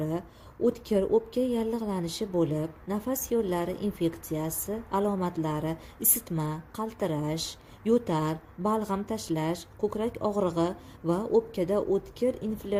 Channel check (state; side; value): identical; both; correlation 1.00